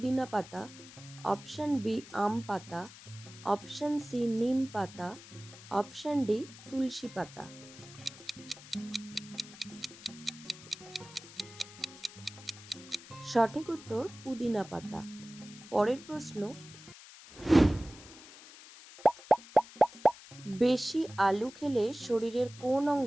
পাতা, অপশন বি আম পাতা, অপশন সি নিম পাতা, অপশন ডি তুলসী পাতা। সঠিক উত্তর পুদিনা পাতা। পরের প্রশ্ন, বেশি আলু খেলে শরীরের কোন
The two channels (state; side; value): noise; left; hiss, 18 dB below the sound